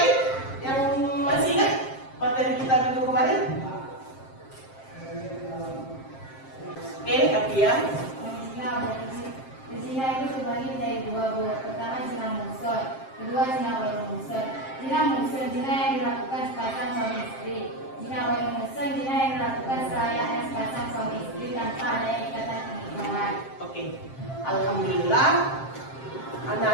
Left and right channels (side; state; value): right; late; 7.5 ms